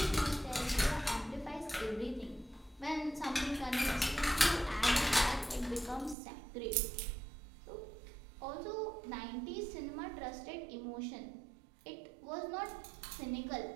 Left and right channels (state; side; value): drops out; left; at 6.2 s